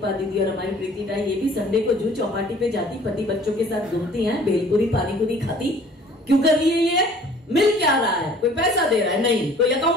दीदी और हमारी प्रीति टाई, ये भी संडे को जू चौपाटी पे जाती, पति बच्चों के साथ घूमती हैं, भेलपुरी पानी पूरी खाती। क्यों कर रही है ये? मिल क्या रहा है? कोई पैसा दे रहा है? नहीं। कोई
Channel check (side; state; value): both; normal; correlation 0.52